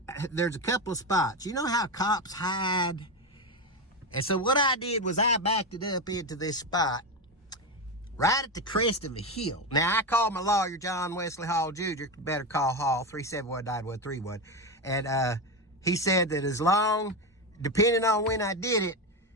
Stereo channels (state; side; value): normal; both; correlation 0.14